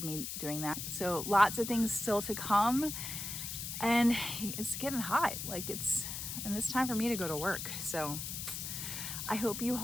me doing that. So lots of things still to come. And it's getting hot, like and it's time for me to go to work. So I hope you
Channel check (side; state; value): left; noise; hiss, 5 dB below the sound